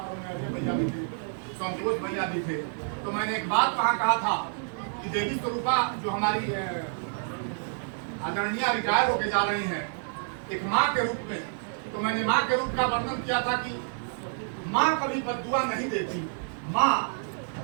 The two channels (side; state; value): left; silent; digital silence